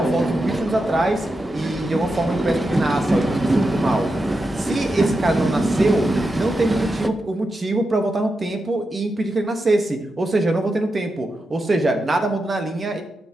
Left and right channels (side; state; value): both; normal; correlation 0.88